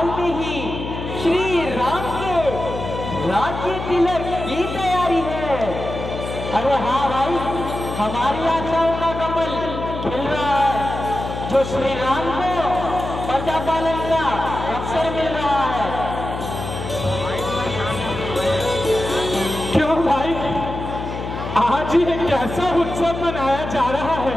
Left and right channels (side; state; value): left; noise; hum, 6 dB below the sound